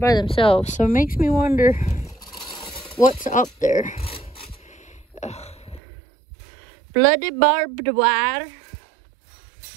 themselves. So it makes me wonder what's up there. Ugh. Bloody barbed wire.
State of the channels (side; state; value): left; drops out; at 5.8 s